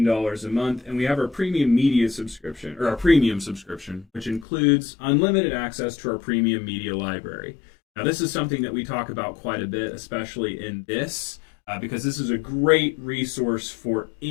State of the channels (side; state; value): right; drops out; at 4.5 s